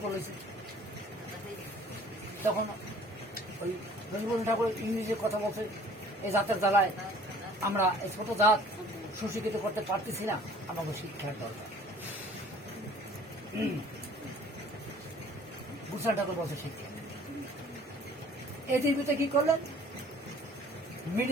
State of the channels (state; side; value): normal; both; correlation 0.52